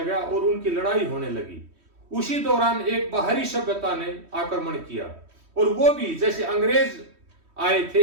और उनकी लड़ाई होने लगी। उसी दौरान एक बाहरी सभ्यता ने आक्रमण किया और वो भी जैसे अंग्रेज आए थे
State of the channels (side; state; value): left; late; 3.1 ms